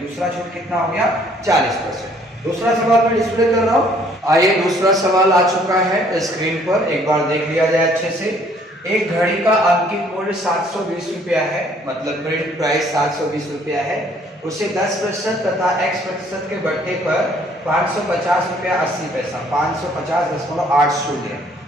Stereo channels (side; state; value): both; normal; correlation 0.61